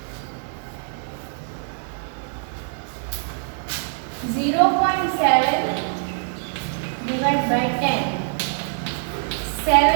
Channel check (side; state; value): left; silent; 63 dB below the other